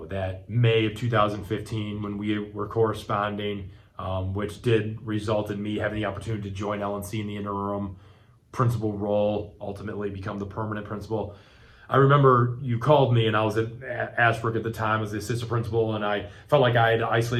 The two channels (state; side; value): identical; both; correlation 1.00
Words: that May of 2015 when we were corresponding, which did result in me having the opportunity to join LNC in the interim principal role, ultimately become the permanent principal. I remember you called me, and I was at Ashbrook at the time as the assistant principal, and I felt like I had to